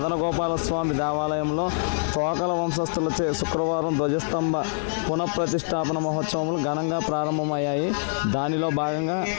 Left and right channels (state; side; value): silent; right; 62 dB below the other